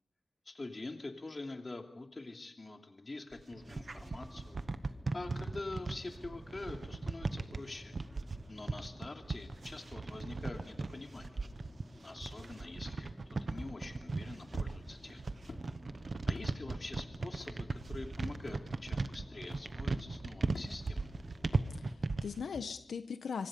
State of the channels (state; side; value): normal; both; correlation 0.93